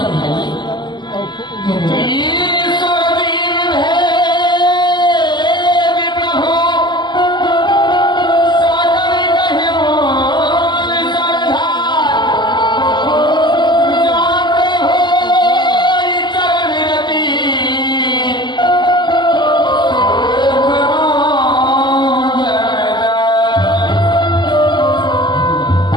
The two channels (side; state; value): right; late; 0.21 ms